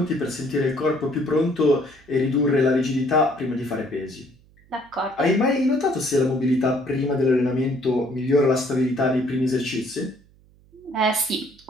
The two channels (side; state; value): right; noise; hum, 29 dB below the sound